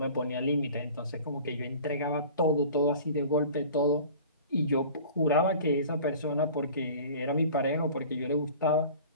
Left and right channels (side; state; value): both; inverted; correlation -0.43